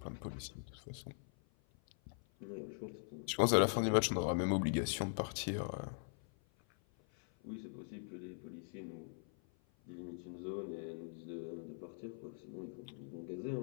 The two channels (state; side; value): silent; right; 50 dB below the other